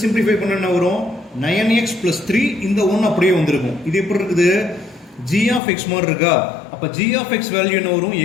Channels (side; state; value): right; drops out; at 5.6 s